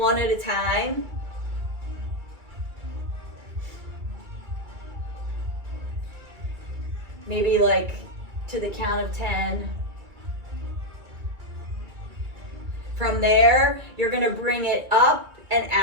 at a time. Maybe like to the count of 10. From there, you're gonna bring it up and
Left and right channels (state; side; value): late; left; 2.3 ms